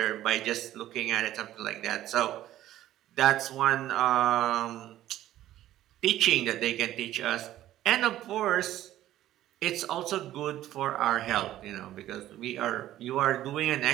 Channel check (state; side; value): quieter; left; 13.6 dB